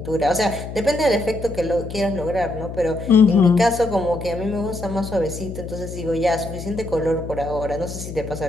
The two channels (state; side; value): noise; left; hum, 9 dB below the sound